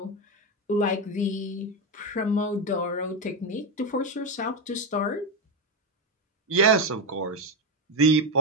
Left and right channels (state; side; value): normal; both; correlation 0.11